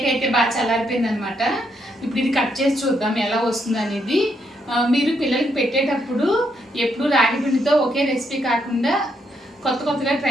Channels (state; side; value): normal; both; correlation 0.77